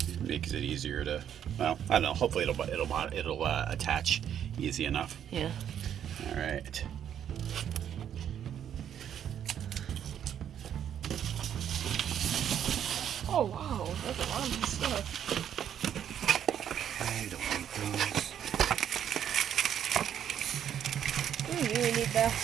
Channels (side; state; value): left; quieter; 9.4 dB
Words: makes it easier to. Well, I don't know. Hopefully, it'll attach easy enough. Yeah. All right. Oh wow, there's a lot of stuff. I don't need those. You really need that.